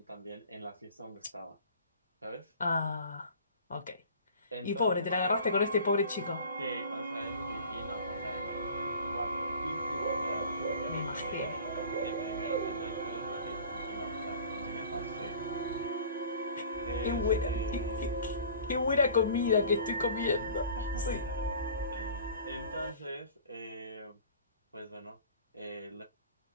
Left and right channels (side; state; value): both; inverted; correlation -0.45